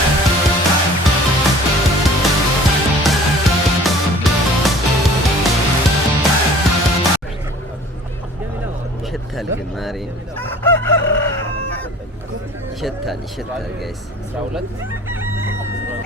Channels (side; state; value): both; normal; correlation 0.48